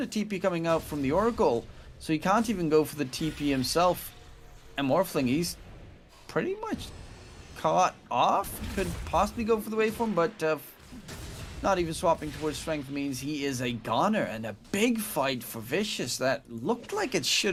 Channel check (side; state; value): both; identical; correlation 1.00